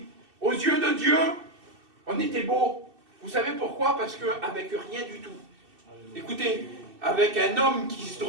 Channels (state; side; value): late; left; 2.6 ms